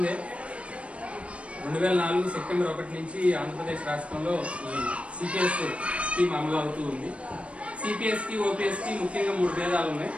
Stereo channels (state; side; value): late; left; 0.062 ms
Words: 2004 సెప్టెంబర్ 1 నుంచి ఆంధ్రప్రదేశ్ రాష్ట్రంలో ఈ సిపిఎస్ స్కీమ్ అమలు అవుతూ ఉంది. సిపిఎస్ కి ఓపీఎస్ కి ముఖ్యంగా 3 భేదాలు ఉన్నాయి: